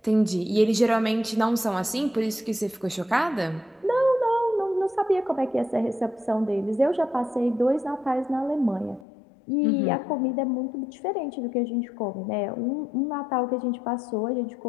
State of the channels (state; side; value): drops out; right; at 9.1 s